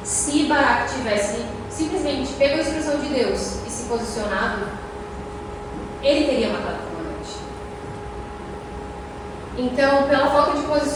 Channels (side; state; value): both; identical; correlation 1.00